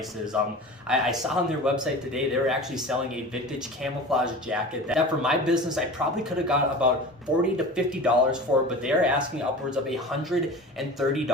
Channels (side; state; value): both; normal; correlation 0.35